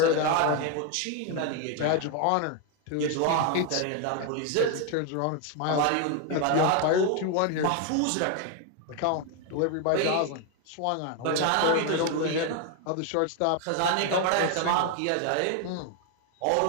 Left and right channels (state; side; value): different; both; correlation 0.01